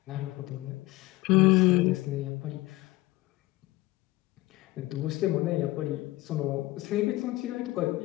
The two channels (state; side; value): quieter; right; 19.0 dB